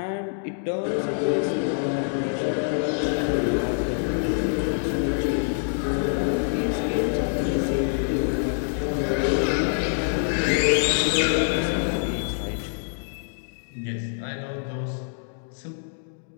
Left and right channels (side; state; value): right; silent; digital silence